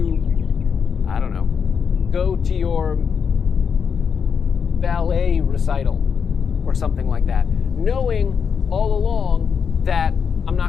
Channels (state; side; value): quieter; right; 6.5 dB